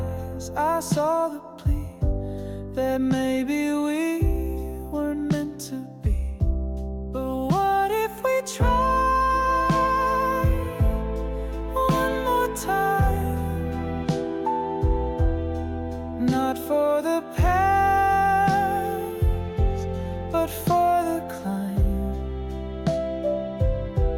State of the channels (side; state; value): both; identical; correlation 1.00